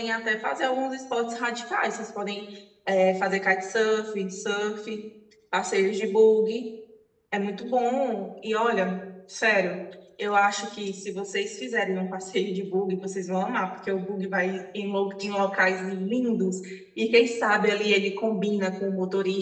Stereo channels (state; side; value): identical; both; correlation 1.00